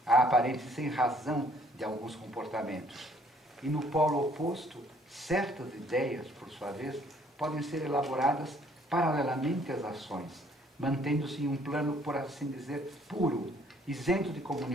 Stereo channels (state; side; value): normal; both; correlation 0.61